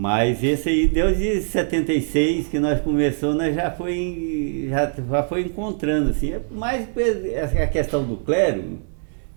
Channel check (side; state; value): left; silent; digital silence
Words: esse aí, desde 76 que nós começamos, nós já foi encontrando assim. Mas a questão do clero,